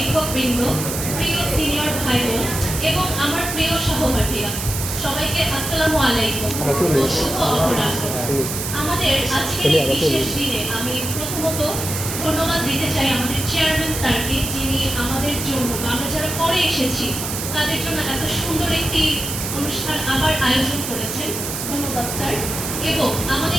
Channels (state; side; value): noise; right; hiss, 5 dB below the sound